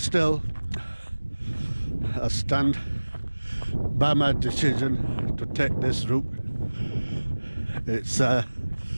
still I stand by my decision to take this route. It's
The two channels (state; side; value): inverted; both; correlation -1.00